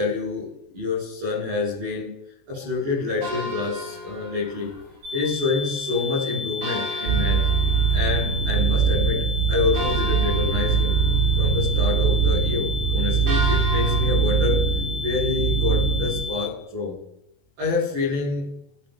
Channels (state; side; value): late; left; 21 ms